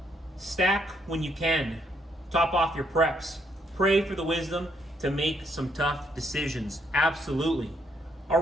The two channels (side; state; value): both; normal; correlation 0.73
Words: Stack when you can. Top off your preps. Pray for the wisdom to make some tough decisions. Absolutely.